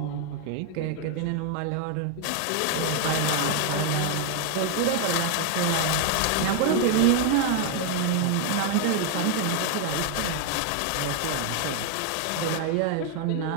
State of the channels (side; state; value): both; different; correlation 0.00